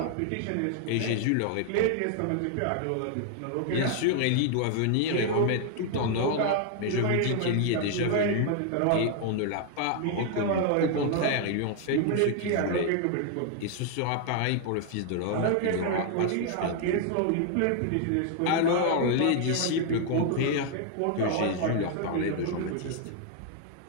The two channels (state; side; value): different; both; correlation 0.00